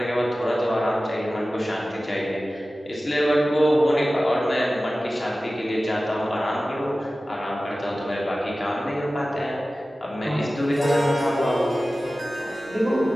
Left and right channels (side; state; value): both; normal; correlation 0.96